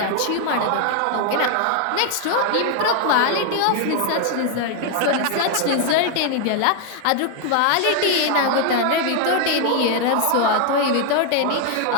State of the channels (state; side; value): different; both; correlation 0.00